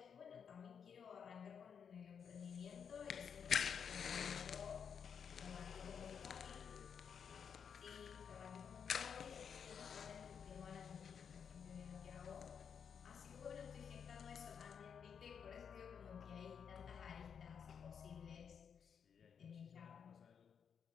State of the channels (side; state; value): right; quieter; 7.1 dB